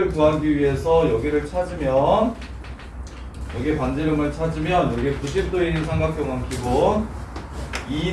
구하기 위해서 여기를 찾으면 여기 반지름을 찾으면 여기 90도인 삼각형은 기본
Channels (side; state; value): both; identical; correlation 1.00